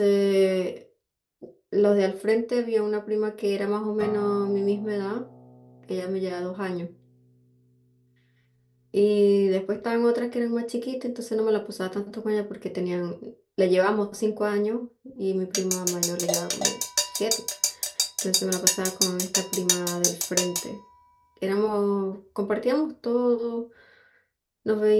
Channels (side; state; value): both; identical; correlation 1.00